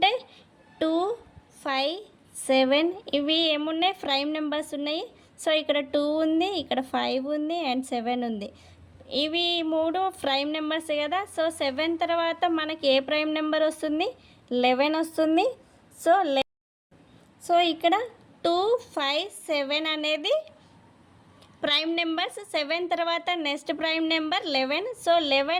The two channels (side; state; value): both; identical; correlation 1.00